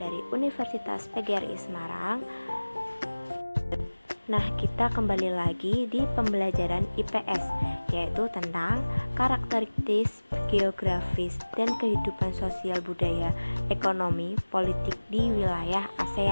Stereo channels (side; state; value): both; inverted; correlation -1.00